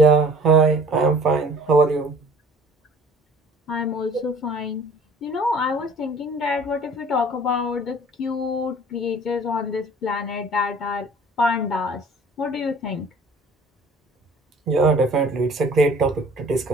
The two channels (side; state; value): both; normal; correlation 0.49